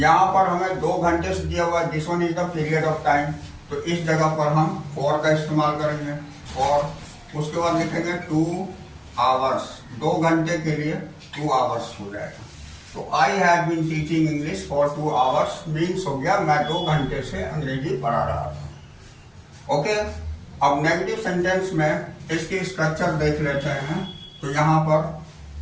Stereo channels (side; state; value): both; identical; correlation 1.00